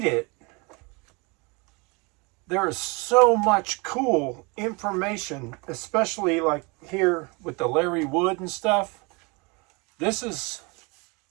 it, there is so much cool information, especially like here with the Larry Wood and stuff. This is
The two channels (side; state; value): left; quieter; 28.7 dB